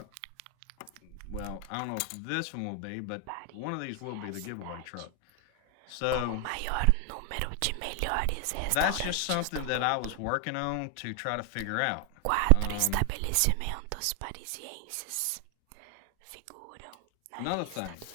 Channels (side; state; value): both; different; correlation 0.00